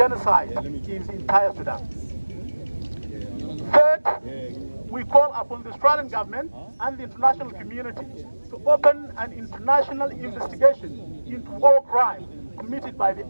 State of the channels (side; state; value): both; inverted; correlation -1.00